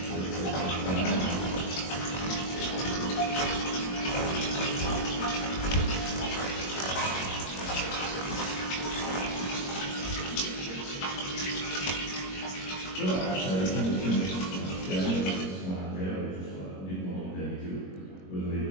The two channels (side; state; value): right; late; 21 ms